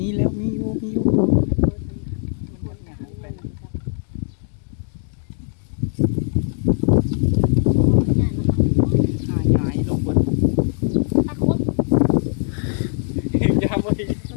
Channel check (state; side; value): silent; right; digital silence